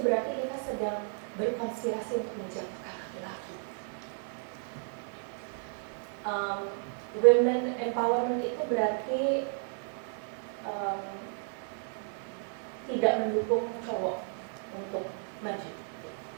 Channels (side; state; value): left; silent; 56 dB below the other